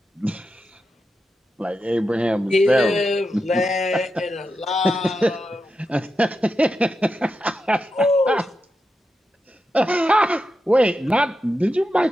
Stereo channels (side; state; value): both; normal; correlation 0.88